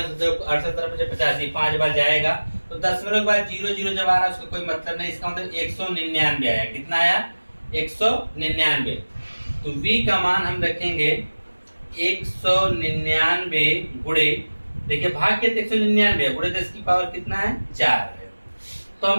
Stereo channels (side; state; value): both; inverted; correlation -1.00